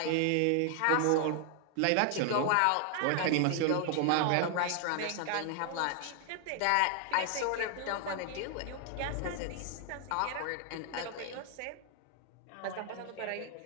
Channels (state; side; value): different; both; correlation 0.00